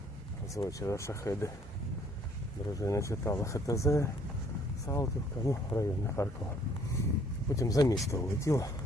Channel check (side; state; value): both; normal; correlation 0.62